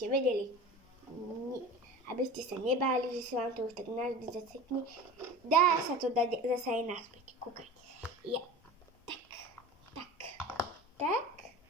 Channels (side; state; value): both; normal; correlation 0.35